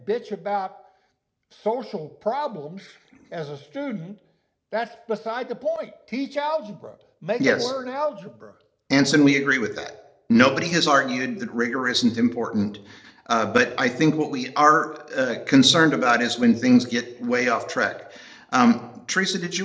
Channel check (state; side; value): identical; both; correlation 1.00